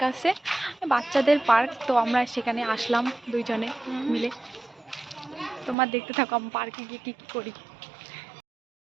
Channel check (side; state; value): left; drops out; at 5.8 s